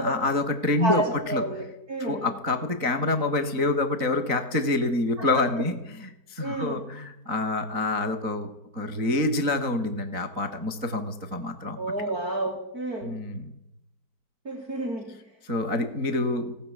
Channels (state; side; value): late; left; 4.0 ms